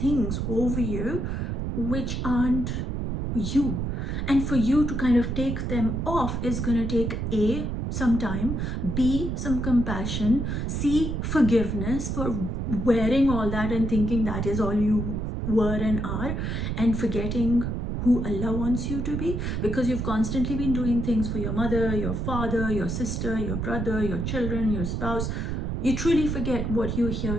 over you, which aren't you. And for you to kind of take them off is going to take some time, be some compassion, see forgiveness for wearing all that and thinking that is all you were and are, and forgetting who Allah wants you to be, because you've constantly been doing things for your mother, your father, your sister, your brother, your children, your spouse. You truly forget what you're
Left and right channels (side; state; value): right; noise; rumble, 2 dB below the sound